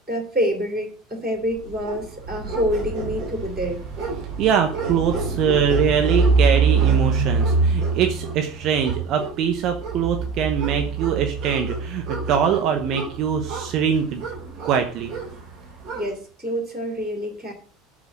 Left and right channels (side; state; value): left; quieter; 5.0 dB